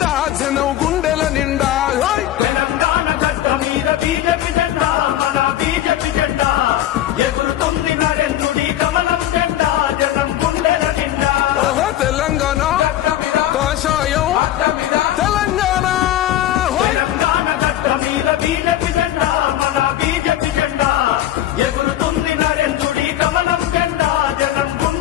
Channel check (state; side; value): quieter; right; 12.7 dB